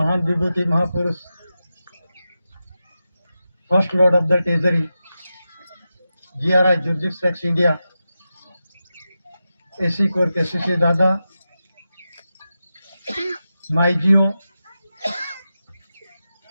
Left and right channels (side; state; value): both; inverted; correlation -0.91